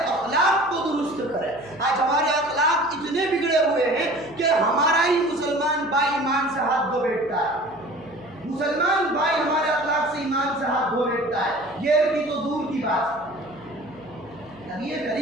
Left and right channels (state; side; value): noise; left; hum, 24 dB below the sound